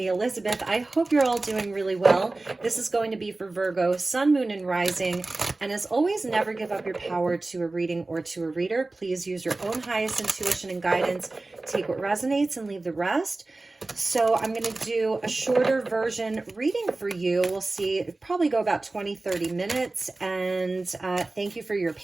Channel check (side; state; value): left; quieter; 3.2 dB